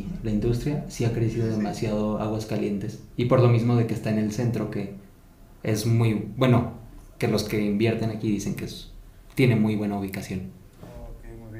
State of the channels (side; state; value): both; identical; correlation 1.00